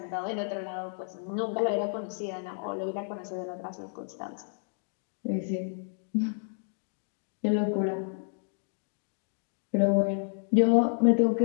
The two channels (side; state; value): right; silent; digital silence